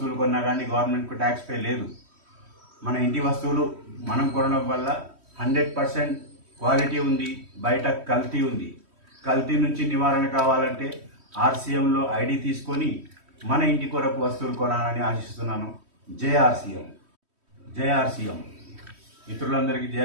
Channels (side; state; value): left; late; 3.1 ms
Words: కొన్నా కానీ గవర్నమెంట్కు ట్యాక్స్ పే లేదు. మన ఇంటి వస్తువులు మనం కొనడం వల్ల 100% క్వాలిటీ ఉంది, బయట కల్తీ ఉంది. కల్తీ నుంచి నివారణ కావాలంటే ఆర్సీఎంలో ఐడి తీసుకొని మన ఇంటి కొరకు వస్తువులు కొనాలని ఆశిస్తున్నాను. జేఆర్సీఎం మిత్రులందరికీ